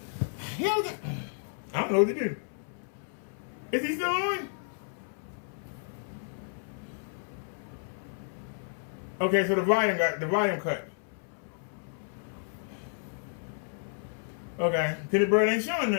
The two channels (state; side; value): silent; right; 57 dB below the other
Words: I don't know what to do. Is he still on? Okay, so the volume cut. Okay, cause the bird ain't showing